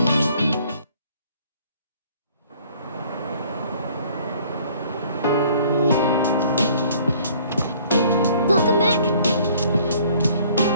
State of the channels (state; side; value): inverted; both; correlation -0.57